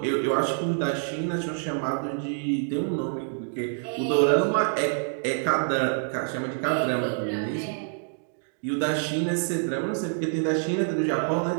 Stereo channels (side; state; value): left; silent; digital silence